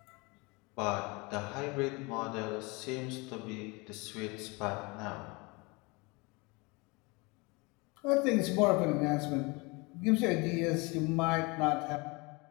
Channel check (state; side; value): quieter; right; 27.0 dB